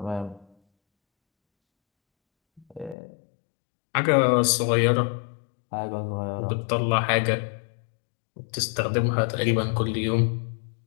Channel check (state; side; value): drops out; right; at 3.0 s